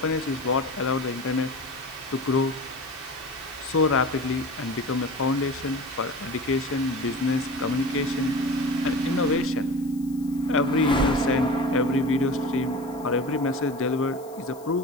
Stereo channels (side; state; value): left; noise; hiss, 23 dB below the sound